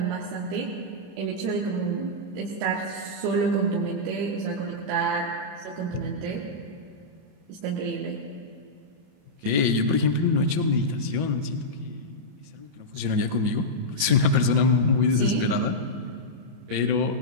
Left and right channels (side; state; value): left; late; 27 ms